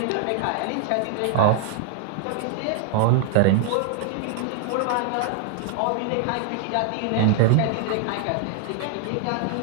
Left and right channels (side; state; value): both; different; correlation 0.00